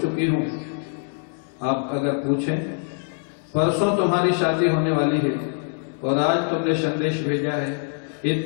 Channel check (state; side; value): silent; right; 63 dB below the other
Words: हूं। आप अगर पूछें, परसों तुम्हारी शादी होने वाली है और आज तुमने संदेश भेजा है,